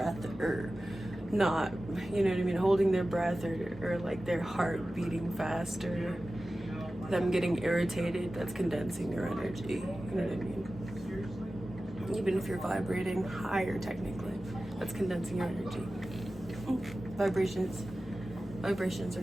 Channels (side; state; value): both; normal; correlation 0.95